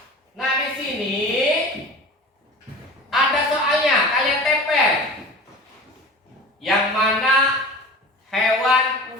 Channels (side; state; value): both; normal; correlation 0.37